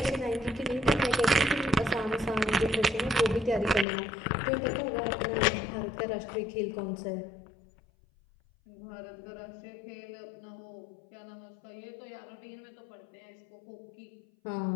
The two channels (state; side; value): drops out; right; at 3.9 s